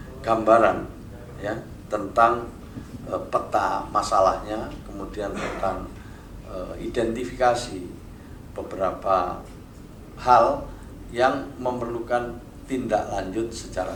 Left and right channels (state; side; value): identical; both; correlation 1.00